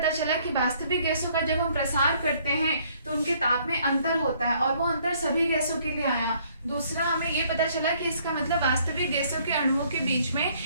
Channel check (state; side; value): inverted; both; correlation -0.64